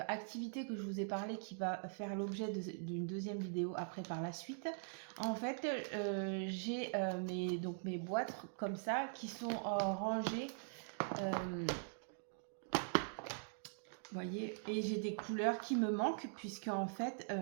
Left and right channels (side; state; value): left; silent; digital silence